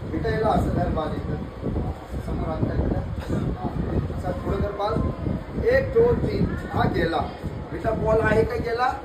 बेटा याला असं धर बाल. इथं समोर आणता असा थोडं धर बाल. 1 2 3 हा गेला बेटा. बॉल आहे का गेला?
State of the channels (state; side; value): identical; both; correlation 1.00